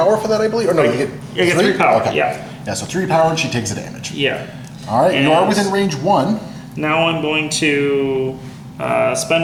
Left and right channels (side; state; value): both; identical; correlation 1.00